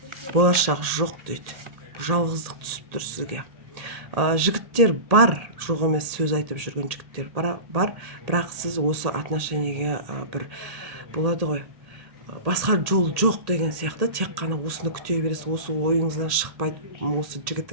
Болашақ жоқ дейді. Жалғыздық түсіп тұр сізге. Жігіттер бар, жоқ емес сөз айтып жүрген жігіттер бар, бірақ сіз осы отношениеге бір болады ғой, басқа жол жоқ деген сияқты, тек қана осыны күте бересіз, осы ойыңыздан шықпайды осы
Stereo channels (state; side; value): late; left; 1.8 ms